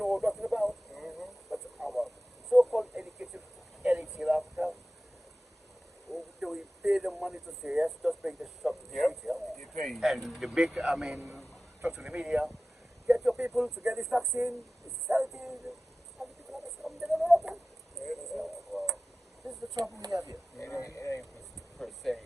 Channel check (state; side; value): normal; both; correlation 0.96